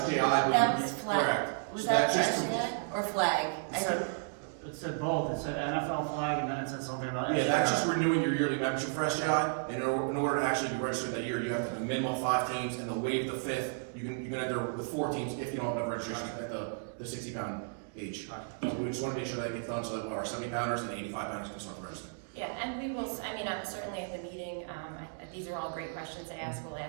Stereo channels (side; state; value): left; silent; digital silence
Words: SJI, I believe. That was flag. Correct. Was So that just internet or flag? It said both, it said NFL flag, and then it said something about. Yeah, that's just renewing your yearly membership for SJI, and in order to actually be registered that year, you have to have a minimum of 5 teams, and they'll waive the 5th, you can enter with 4 teams if you don't have enough registration at the 60 pound age. So we just wanna make sure that gets done, so that our 70 pounders and 85 pounders can start registering. Yeah, and we will, certainly at the meeting, these are all great questions to ask, we'll